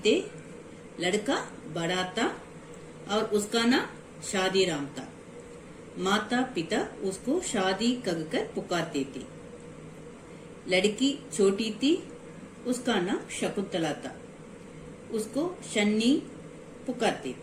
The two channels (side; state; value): both; identical; correlation 1.00